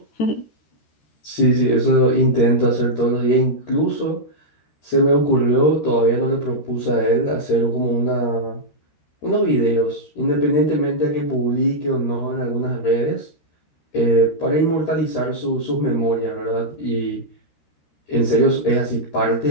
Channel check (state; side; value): late; right; 13 ms